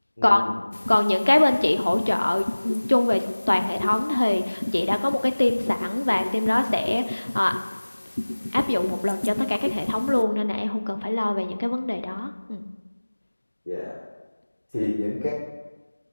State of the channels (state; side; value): inverted; both; correlation -1.00